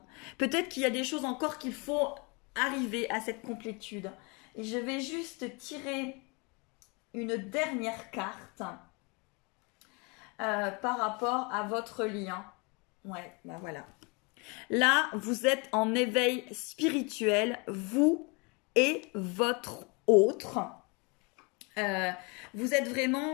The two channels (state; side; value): quieter; right; 30.7 dB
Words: Peut-être qu'il y a des choses encore qu'il faut arriver à cette complétude. Et je vais juste tirer une dernière carte par rapport à votre lien. Ouais, ben voilà. Là, vous êtes en éveil spirituel, vous et votre autre. Vous êtes